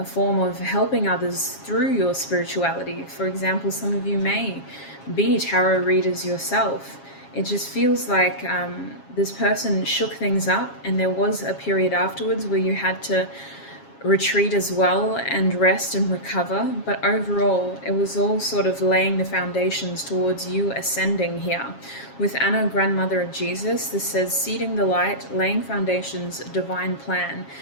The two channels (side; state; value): right; late; 7.3 ms